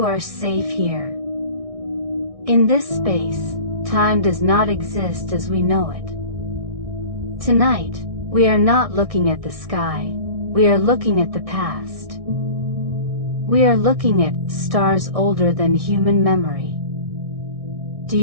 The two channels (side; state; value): left; late; 1.6 ms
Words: are safe here. In this space, time does not exist as we know it. Tonight, we are not looking at the sky, we are looking at the past. We are looking at stars older than human memory. Do